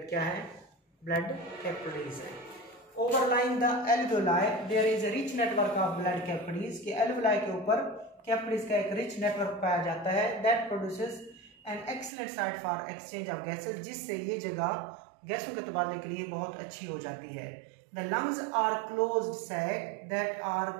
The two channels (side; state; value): left; drops out; at 12.1 s